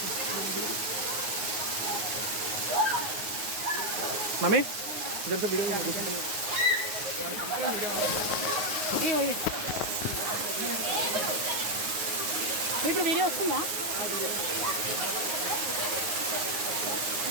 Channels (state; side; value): late; left; 9.5 ms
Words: మమ్మీ ఇప్పుడు వీడియో వస్తుందా